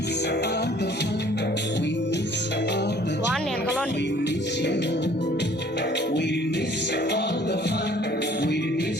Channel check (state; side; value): normal; both; correlation 0.55